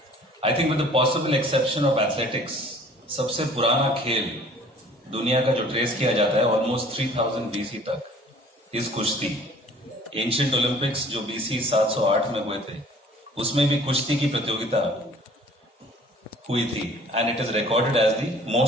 I think with the possible exception of athletics, सबसे पुराना खेल दुनिया का जो ट्रेस किया जाता है ऑलमोस्ट 3000 BC तक, इस कुश्ती। एंशिएंट ओलंपिक्स जो BC 708 में हुए थे, उसमें भी कुश्ती की प्रतियोगिता हुई थी, and it is recorded as the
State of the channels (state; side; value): normal; both; correlation 0.51